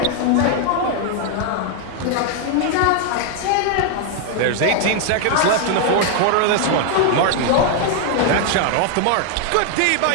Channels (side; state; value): both; different; correlation 0.01